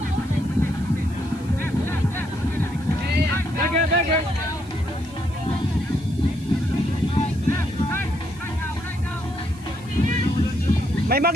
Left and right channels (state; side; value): noise; right; hiss, 24 dB below the sound